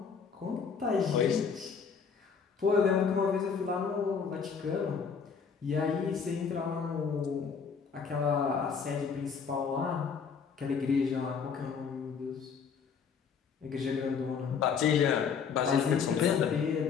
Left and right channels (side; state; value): right; quieter; 6.2 dB